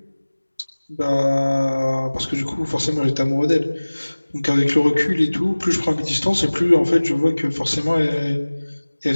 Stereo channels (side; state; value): both; inverted; correlation -1.00